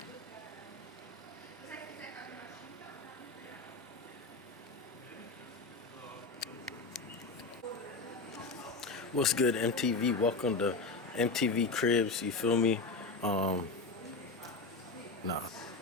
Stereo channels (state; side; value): quieter; right; 3.7 dB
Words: What's good, MTV? Welcome to MTV Cribs, you feel me? Nah.